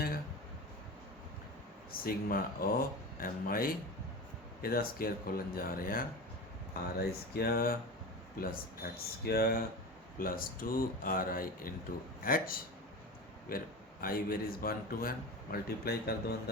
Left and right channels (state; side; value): normal; both; correlation 0.29